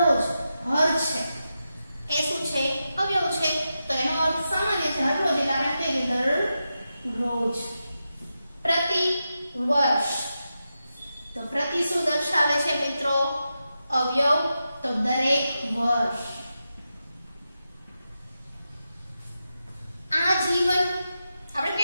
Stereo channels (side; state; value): both; inverted; correlation -0.89